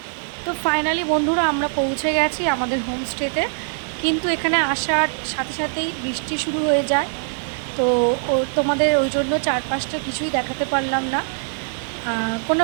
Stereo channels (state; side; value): silent; left; 64 dB below the other